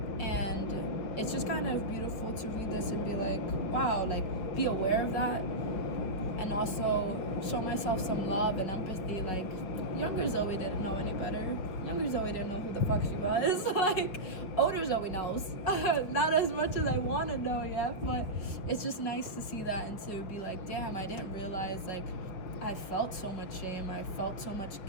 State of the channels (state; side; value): late; right; 5.4 ms